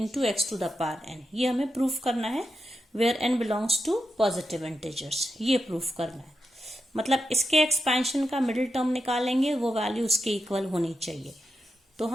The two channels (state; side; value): normal; both; correlation 0.86